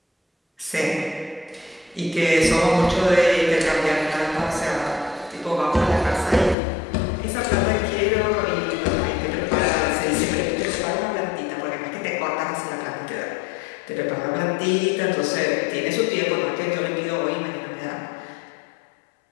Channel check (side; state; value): right; drops out; at 6.6 s